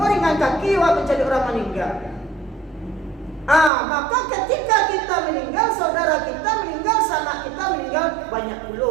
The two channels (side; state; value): left; drops out; at 3.7 s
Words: ringan kaki, mencari orang meninggal. Maka ketika kita meninggal, saudara kita meninggal, sanak kita meninggal, banyak pula